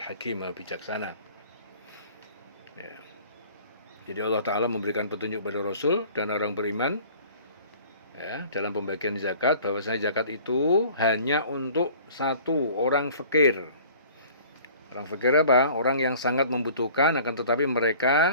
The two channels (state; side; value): inverted; both; correlation -0.49